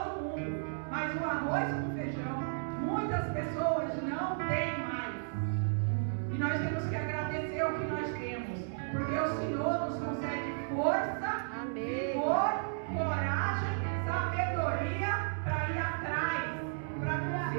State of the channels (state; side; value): silent; left; 55 dB below the other